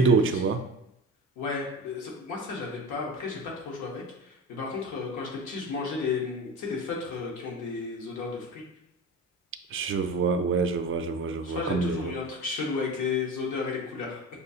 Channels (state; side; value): normal; both; correlation 0.30